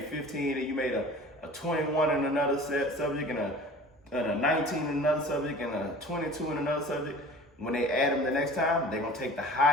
15, and you made a 21 in another subject, and a 19 in another subject, and a 22 in another subject. When they add them the next time, they're going to take the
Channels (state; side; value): normal; both; correlation 0.42